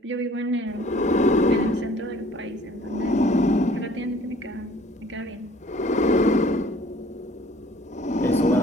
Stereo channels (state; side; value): normal; both; correlation 0.54